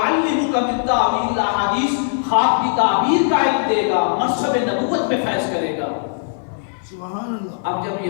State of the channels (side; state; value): right; silent; digital silence